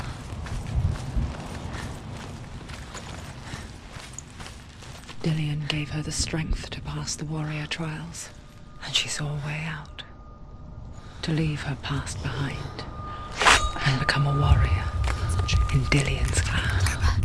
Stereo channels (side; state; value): both; identical; correlation 1.00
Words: Dillion gave her the strength to pass the warrior trials, and she saw a way out. To leave her past behind and become a warrior in Dillion's clan.